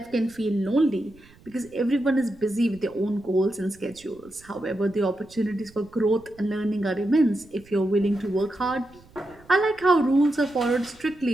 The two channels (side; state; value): right; noise; rumble, 26 dB below the sound